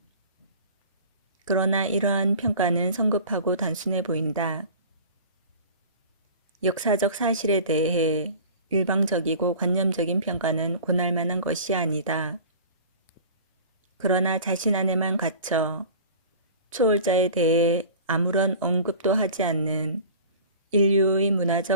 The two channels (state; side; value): inverted; both; correlation -0.41